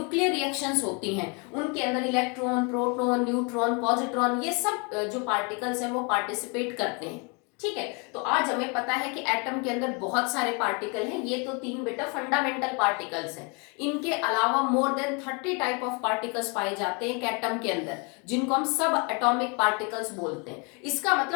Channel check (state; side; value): quieter; right; 32.8 dB